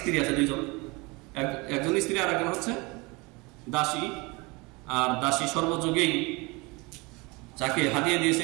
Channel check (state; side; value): quieter; left; 26.3 dB